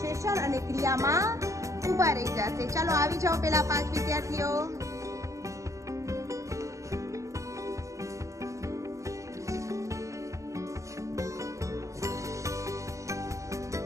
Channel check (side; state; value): left; late; 0.15 ms